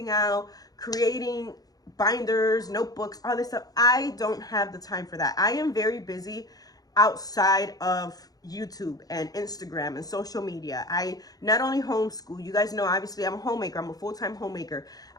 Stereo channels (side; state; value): right; late; 0.18 ms